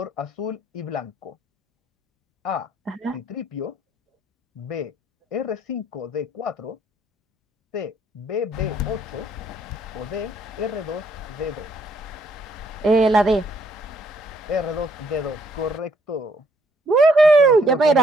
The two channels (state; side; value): normal; both; correlation 0.68